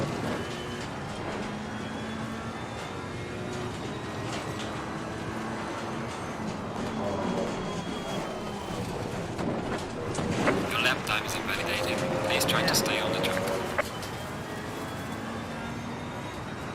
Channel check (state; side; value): identical; both; correlation 1.00